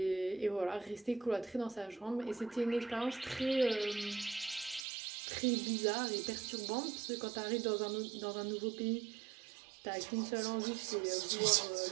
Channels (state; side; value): drops out; left; at 4.9 s